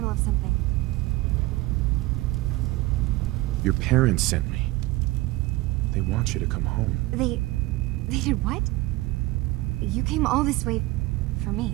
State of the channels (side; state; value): left; quieter; 20.0 dB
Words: of something. Your parents sent me. They want you to come home. They did what? You came all this way for me.